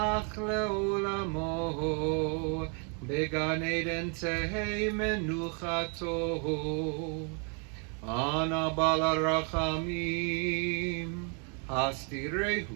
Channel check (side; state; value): left; quieter; 38.2 dB